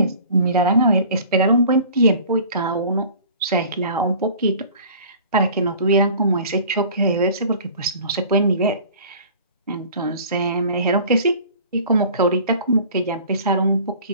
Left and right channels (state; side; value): inverted; both; correlation -0.46